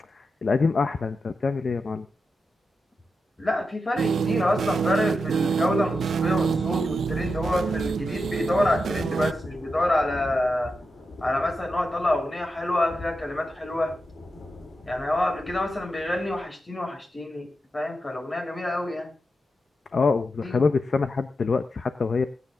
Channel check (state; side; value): normal; both; correlation 0.88